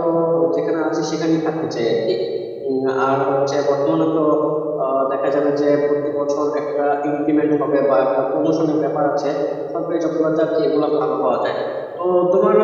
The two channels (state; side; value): identical; both; correlation 1.00